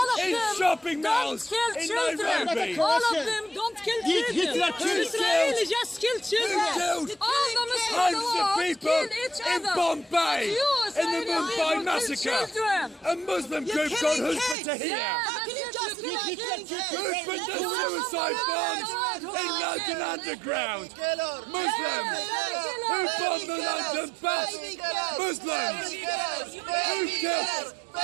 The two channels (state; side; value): drops out; left; at 14.6 s